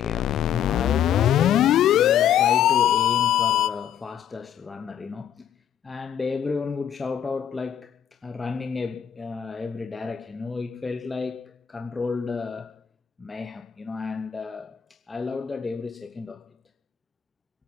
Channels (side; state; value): right; quieter; 9.5 dB